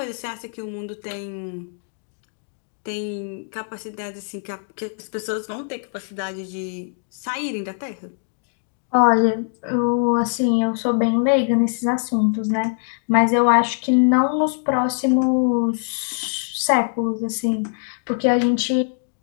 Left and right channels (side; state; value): right; silent; 64 dB below the other